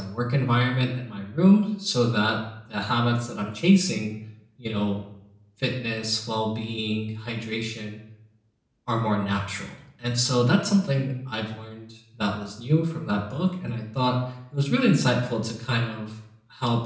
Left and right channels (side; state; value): both; identical; correlation 1.00